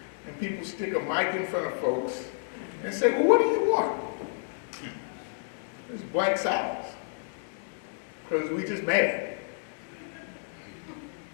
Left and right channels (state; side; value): silent; right; digital silence